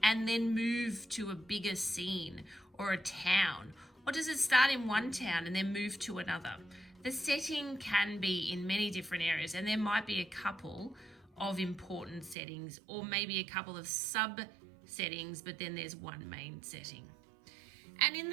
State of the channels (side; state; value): left; drops out; at 12.4 s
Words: and then move to a bigger scene or a town? Or does it start in one town and then move to another? The setting can be in many different areas, and there might be a couple of important settings or maybe a couple of sub-settings, but then there's one main setting. And in